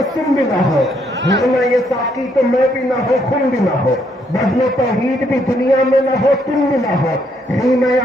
بھی نہ ہو، ہونا یہ ساقی تو میں بھی نہ ہو خون بھی نہ ہو، بزم توحید بھی دنیا میں نہ ہو تم بھی نہ ہو، خیم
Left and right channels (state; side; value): normal; both; correlation 0.72